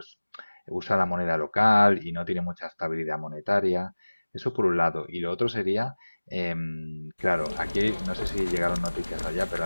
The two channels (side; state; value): both; inverted; correlation -1.00